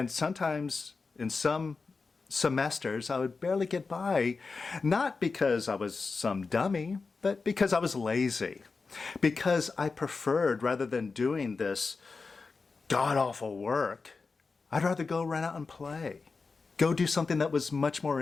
sometimes in some semesters, I would barely get by, not because I was some dummy, but because I was lazy. Because I preferred, rather than doing this god-awful work, I'd rather go run out and play. Go do something that was much more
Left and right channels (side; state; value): right; quieter; 4.4 dB